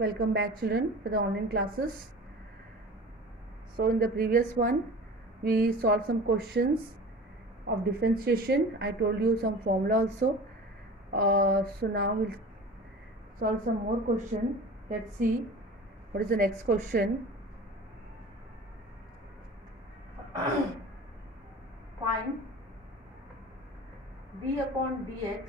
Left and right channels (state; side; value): normal; both; correlation 0.38